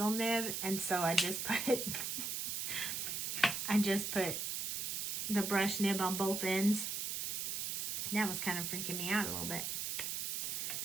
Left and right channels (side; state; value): right; noise; hiss, 1 dB below the sound